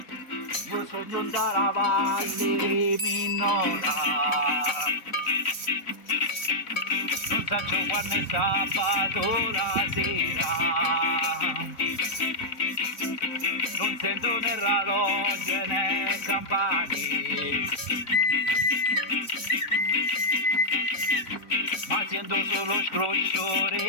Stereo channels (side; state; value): right; late; 3.9 ms